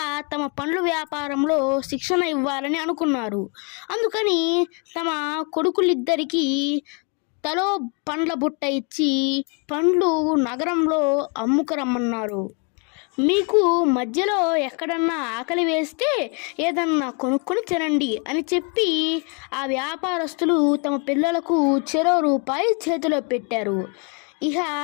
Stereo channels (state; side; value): quieter; right; 35.4 dB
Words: తమ పండ్ల వ్యాపారంలో శిక్షణ ఇవ్వాలని అనుకున్నారు. అందుకని తమ కొడుకులిద్దరికీ తలో పండ్ల బుట్ట ఇచ్చి పండ్లు నగరంలో అమ్ముకురమ్మన్నారు. మీకు మధ్యలో ఎక్కడన్నా ఆకలి వేస్తే ఏదన్నా కొనుక్కొని తినండి అని చెప్పి ఆ వ్యాపారస్తులు తమ పిల్లలకు చెరో రూపాయి చేతిలో పెట్టారు. ఇక